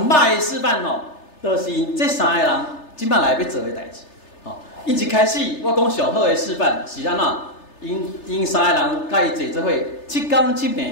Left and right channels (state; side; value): late; right; 3.3 ms